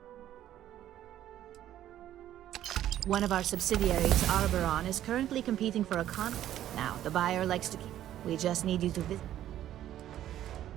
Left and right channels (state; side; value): quieter; left; 12.2 dB